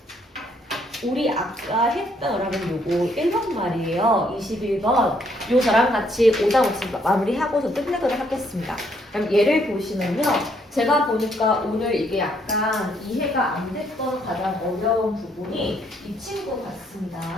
우리 아까 했던 여러분 요거 1번 말이에요. 21번. 요 저랑 같이 오답 없이 마무리하고서 끝내도록 하겠습니다. 그럼 얘를 보시면요. 제가 보니까 오늘 이게 약간 이해가 안 됐던 가장 어려운 부분이 이 친구 같습니다.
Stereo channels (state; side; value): normal; both; correlation 0.69